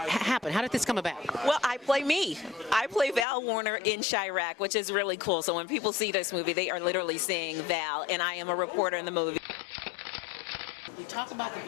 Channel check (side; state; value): right; drops out; at 3.2 s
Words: happen? How did this come about? Well, I play me. I play Val Warner in Chirac, which is really cool. So when people see this movie, they are literally seeing Val, and I am a reporter in the movie. We talk about the